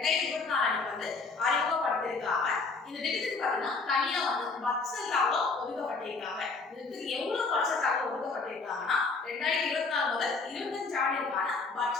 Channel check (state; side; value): quieter; right; 4.1 dB